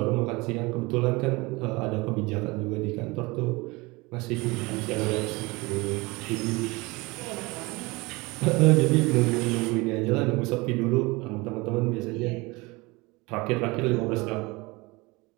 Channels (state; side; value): quieter; left; 24.1 dB